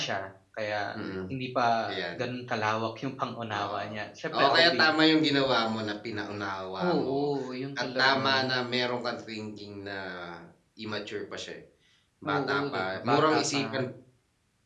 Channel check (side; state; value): both; identical; correlation 1.00